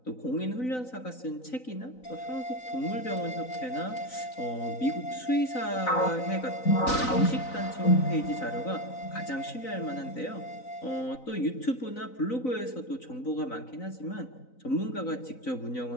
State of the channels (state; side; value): late; right; 4.0 ms